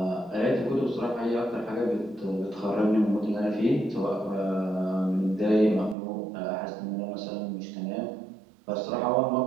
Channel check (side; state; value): left; drops out; at 6.0 s